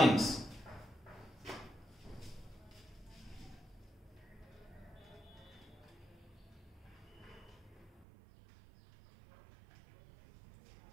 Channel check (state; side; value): drops out; left; at 8.1 s